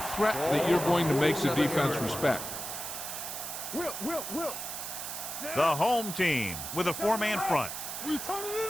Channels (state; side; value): noise; right; hiss, 6 dB below the sound